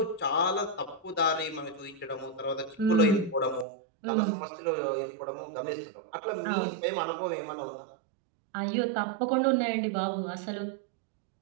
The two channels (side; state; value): left; drops out; at 3.7 s